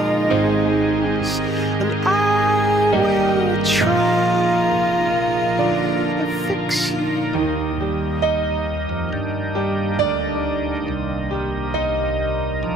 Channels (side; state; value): left; noise; rumble, 23 dB below the sound